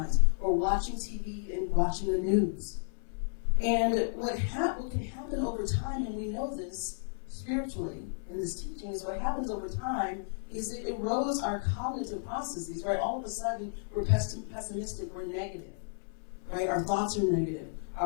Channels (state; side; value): silent; right; 56 dB below the other